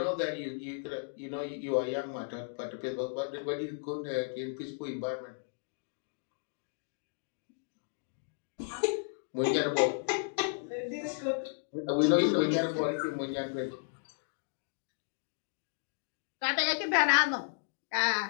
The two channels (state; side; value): silent; right; digital silence